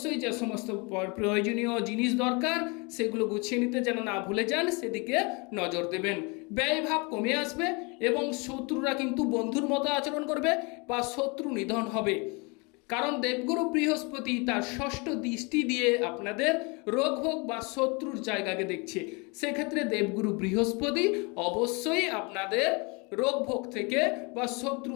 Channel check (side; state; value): right; quieter; 29.9 dB